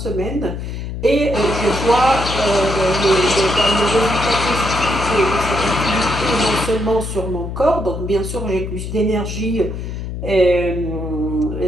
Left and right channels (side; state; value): left; noise; hum, 6 dB below the sound